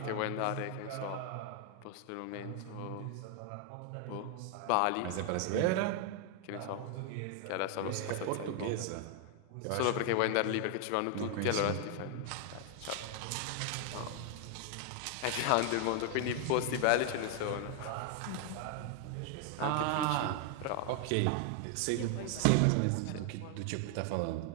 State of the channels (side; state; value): both; different; correlation 0.00